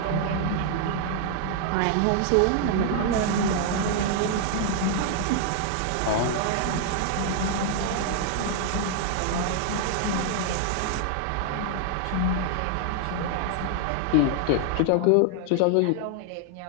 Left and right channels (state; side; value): different; both; correlation 0.00